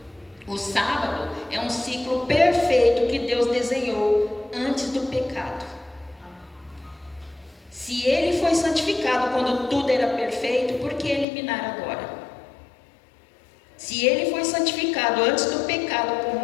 O sábado é um ciclo perfeito que Deus desenhou antes do pecado. Se ele foi santificado quando tudo era perfeito, por que eliminar agora? Se ele foi santificado antes do pecado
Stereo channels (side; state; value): right; drops out; at 11.2 s